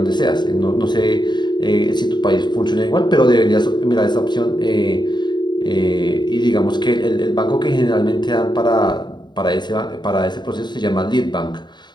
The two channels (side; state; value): right; late; 0.21 ms